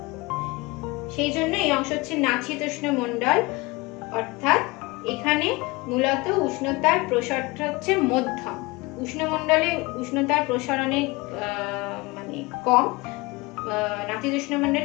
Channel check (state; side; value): quieter; right; 23.5 dB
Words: সেই জন্য এই অংশ হচ্ছে নাতিশীতোষ্ণ মণ্ডল। অর্থাৎ এখানে মূলত উষ্ণতার প্রসারটা হচ্ছে মধ্যম। উষ্ণমণ্ডলে উষ্ণতার প্রসার অনেক মানে কম, নাতিশীতোষ্ণ